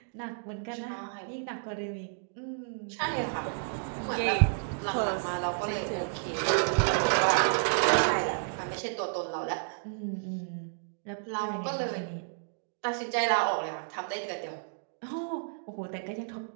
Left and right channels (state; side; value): silent; left; digital silence